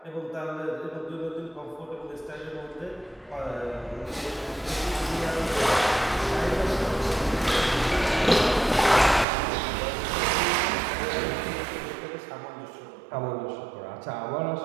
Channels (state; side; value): drops out; left; at 9.2 s